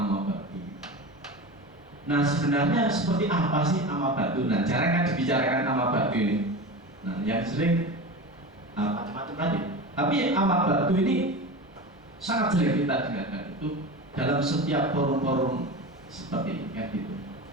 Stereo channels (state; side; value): normal; both; correlation 0.28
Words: batu. Nah sebenarnya seperti apa sih ama batu? Nah jarang kan dibicarakan ama batu ini. Nah yang sering macam-macam tadi. Tapi ama batu ini sangat sering kita dengarkan itu dalam setiap forum-forum seperti ini kan gitu.